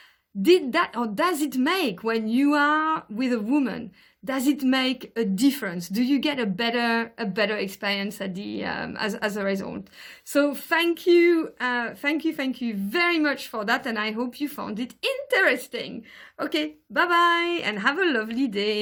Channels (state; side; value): identical; both; correlation 1.00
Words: does it make, when you are with a woman, does it make a difference? Do you get a better experience at the as a result? So thank you very much for that, and I hope you found it interesting. Okay, bye bye, and have a lovely